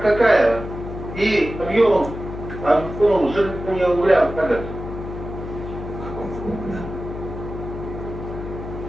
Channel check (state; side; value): noise; left; hum, 9 dB below the sound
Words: и объем сжигания угля как это.